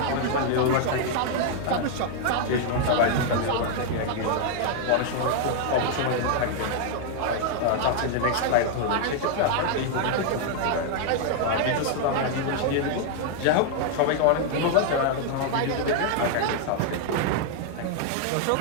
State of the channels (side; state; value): both; different; correlation 0.00